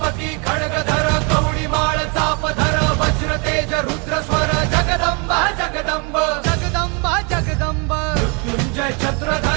खड्गधर कवडी माळ चापधर वज्र तेज रुद्र स्वर जगदंबा जगदंब जगदंबा जगदंब मृत्युंजय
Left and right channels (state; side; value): quieter; left; 32.9 dB